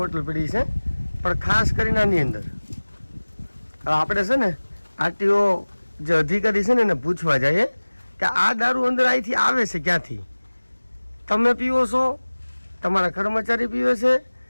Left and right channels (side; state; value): both; inverted; correlation -1.00